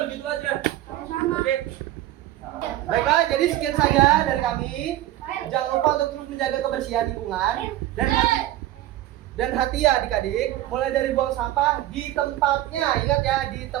begitu aja. Sama-sama. Oke. Baiklah, jadi sekian saja dari kami. Jangan lupa untuk terus menjaga kebersihan lingkungan dan hati ya adik-adik. Mulai dari buang sampah di tempatnya, ingat ya, di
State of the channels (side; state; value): left; quieter; 14.5 dB